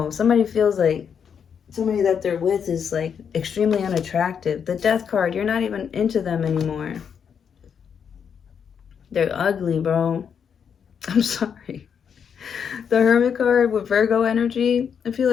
Somebody feels like somebody that they're with is like extremely unattractive. The Death card, you're not even into them anymore. They're ugly, bro. I'm sorry. The Hermit card with Virgo energy, I feel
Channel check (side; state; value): right; quieter; 7.3 dB